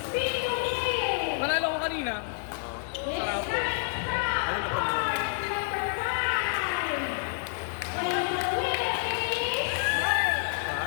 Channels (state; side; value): silent; right; digital silence